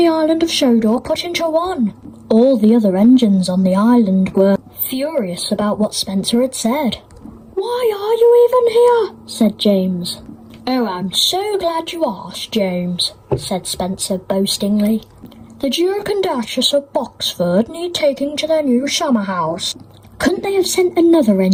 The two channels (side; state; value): both; identical; correlation 1.00